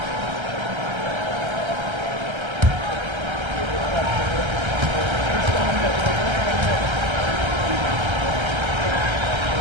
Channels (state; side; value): late; left; 1.3 ms